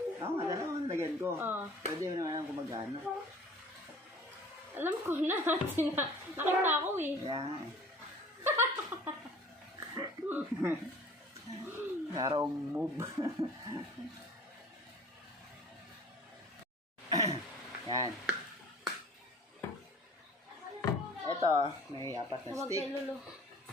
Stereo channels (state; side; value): normal; both; correlation 0.48